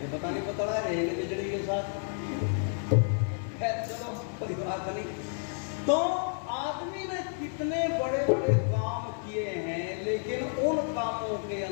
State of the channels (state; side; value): silent; right; 57 dB below the other